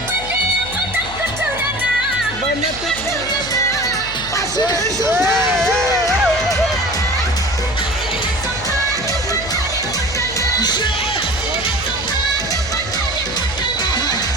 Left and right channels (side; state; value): left; noise; hum, 13 dB below the sound